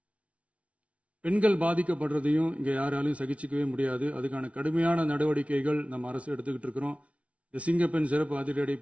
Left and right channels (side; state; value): left; late; 0.064 ms